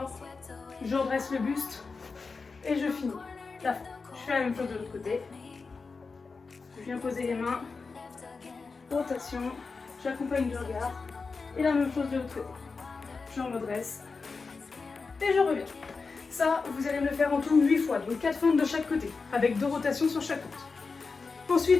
Je redresse le buste et je finis la fin. Je fais la même chose de l'autre côté. Je viens poser les mains, rotation, j'accompagne du regard, et la même chose de l'autre côté. Je redresse, et je reviens. Ça, vous allez me le faire en tout 8 fois, donc 4 fentes de chaque côté, avec 2 rotations sur chaque fente.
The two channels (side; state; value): right; quieter; 4.5 dB